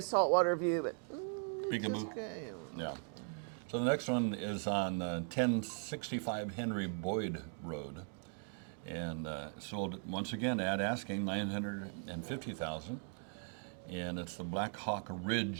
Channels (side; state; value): left; silent; 52 dB below the other